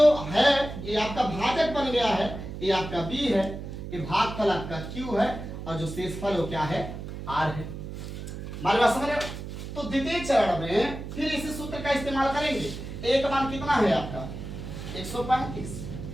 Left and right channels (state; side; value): noise; right; hum, 9 dB below the sound